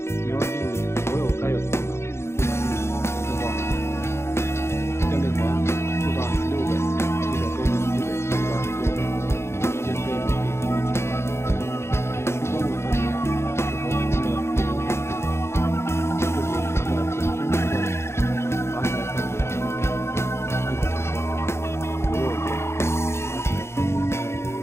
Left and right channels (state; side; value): late; right; 0.13 ms